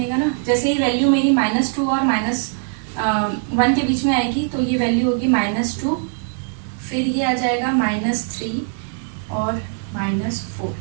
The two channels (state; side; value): silent; left; 63 dB below the other